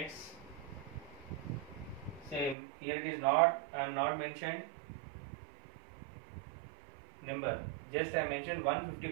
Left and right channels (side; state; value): left; drops out; at 2.6 s